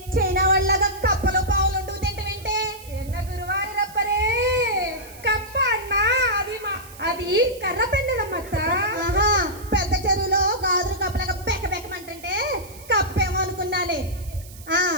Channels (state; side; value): noise; right; hiss, 19 dB below the sound